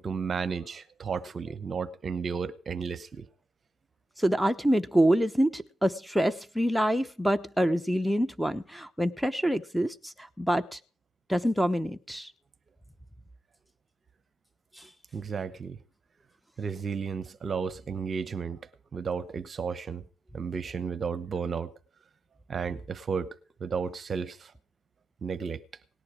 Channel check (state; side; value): normal; both; correlation 0.92